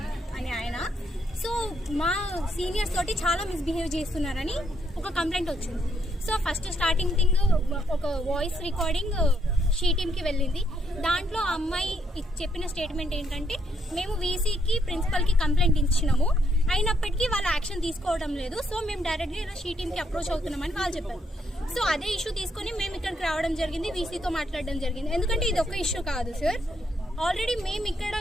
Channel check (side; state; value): both; normal; correlation 0.74